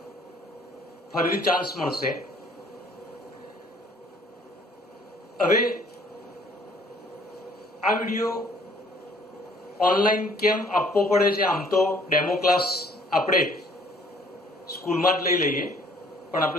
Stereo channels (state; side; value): normal; both; correlation 0.59